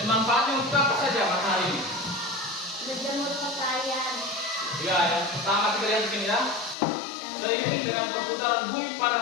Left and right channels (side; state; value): right; drops out; at 6.8 s